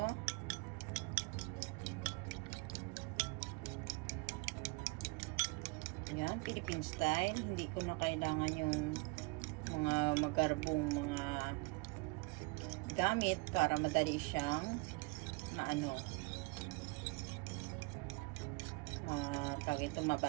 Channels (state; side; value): quieter; left; 28.1 dB